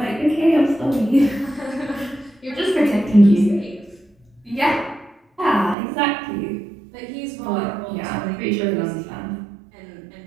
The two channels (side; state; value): left; drops out; at 5.8 s